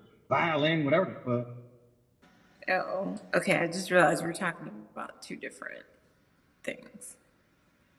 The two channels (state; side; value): identical; both; correlation 1.00